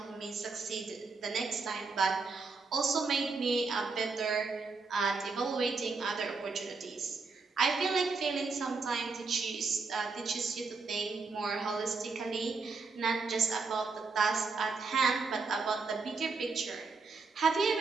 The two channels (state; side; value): quieter; left; 4.3 dB